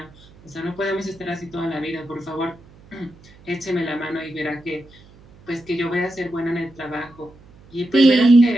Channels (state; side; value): noise; right; hum, 25 dB below the sound